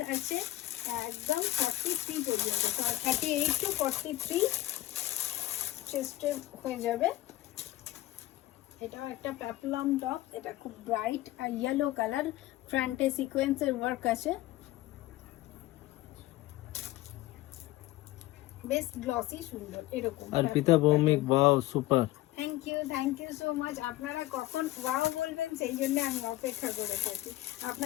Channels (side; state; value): right; quieter; 16.7 dB